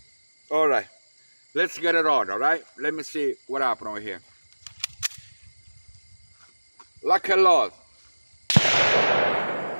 Alright, let's get it on, alright? Let me see what happened over here. Like a lot.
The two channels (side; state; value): both; inverted; correlation -1.00